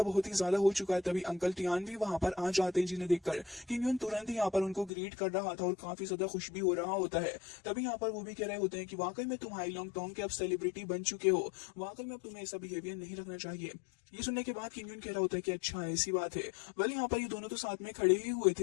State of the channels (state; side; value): drops out; right; at 4.9 s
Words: बहुत ही ज्यादा हो चुका है। तभी अंकल टियान भी वहां पर आ जाते हैं, जिन्हें देखकर किंग यून तुरंत ही यहाँ पर उनको ग्रीट कर रहा था और काफी ज्यादा खुश भी हो रहा होता है। तभी यहाँ पर वो भी कह रहे होते हैं कि वाकई में तुम हाई लॉन्ग टोंग के अब सेलिब्रिटी बन चुके हो, वाकई में अब तुम्हें ऐसा बिहेवियर नहीं रखना चाहिए। ये सुनने के बाद किंग यून कह रहा होता है कि अच्छा ऐसी बात है। वेल यहाँ पर ये दोनों तो साथ में खड़े ही हुए थे,